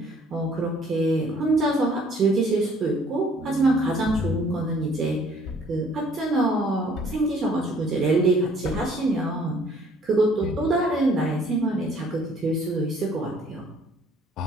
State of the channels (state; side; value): normal; both; correlation 0.59